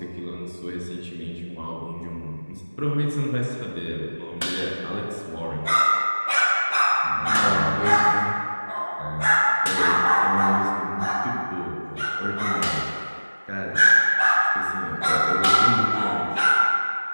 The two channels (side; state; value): both; inverted; correlation -1.00